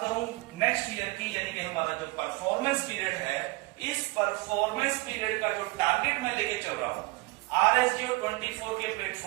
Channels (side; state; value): left; quieter; 24.0 dB